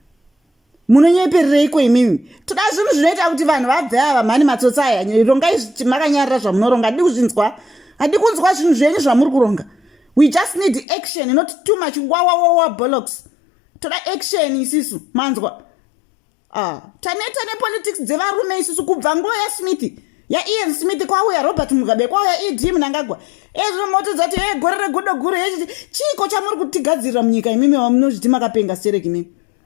Munonyepereiko imimi? Toda zvinhu zvinoita kuti vanhu vabve ava mani matsotsa aya. Rongai makanyarara zvamunoronga. Hadi kunzwa zvinhu zvenyu zvamuri kuronga. We just need action, not too much wawa bollocks. Toda action isisu manzwa. Taneta nepolitics dzevarume isusu kubva nguva yaSmith. Ian Smith kwauya Robert Mugabe kwauya ED Mnangagwa. Ezvo moto dzati gore regodo guru chiko chamuri kutigadzirira munyika imimi vamunozviti makapenga stereki imimi.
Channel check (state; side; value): drops out; right; at 10.9 s